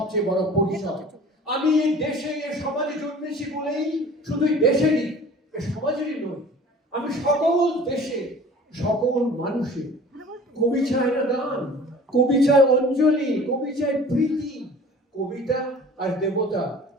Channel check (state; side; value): normal; both; correlation 0.45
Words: বড় পরিচয়। আমি এই দেশে এই সমাজে জন্মেছি বলেই শুধু দেশেরই, সমাজেরই নয়, আমি সকল দেশে সকল মানুষের। কবি চায় না দান, কবি চায় অঞ্জলি, কবি চায় প্রীতি। কবিতা আর দেবতা